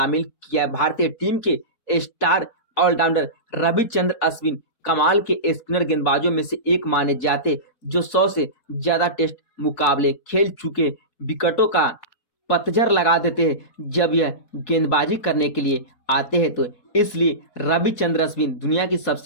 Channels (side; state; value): right; late; 4.2 ms